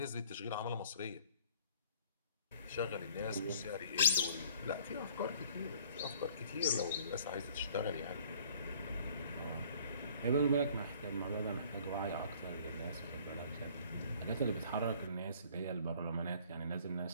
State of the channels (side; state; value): both; inverted; correlation -0.55